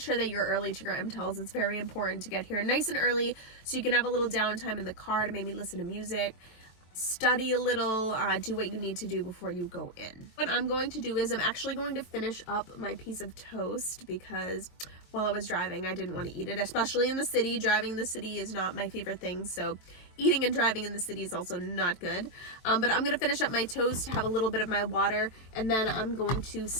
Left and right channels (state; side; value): late; right; 23 ms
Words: sure that you're early to your MTELs. It's very important to get here nice and early so you can have a little downtime in the car to maybe listen to music, study a little, do what you need to do before you go in. What I'm going to do is I'm actually going to finish up my piece of toast because while I was driving, I didn't want to eat it, especially in the city. Driving in the city is not my favorite thing, so eating and driving in the city is also not good. But I'm going to finish up my toast, have a little bit of my water, and then I'm going to